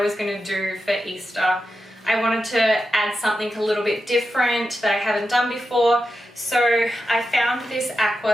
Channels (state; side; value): normal; both; correlation 0.89